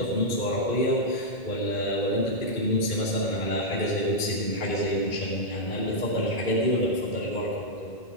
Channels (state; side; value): late; right; 1.8 ms